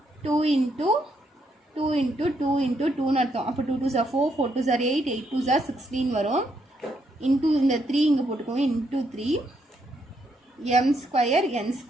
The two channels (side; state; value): both; normal; correlation 0.76